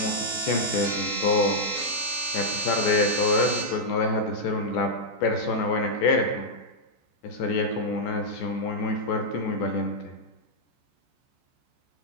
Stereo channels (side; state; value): right; late; 14 ms